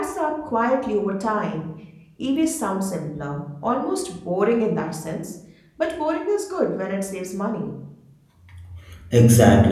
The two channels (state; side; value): identical; both; correlation 1.00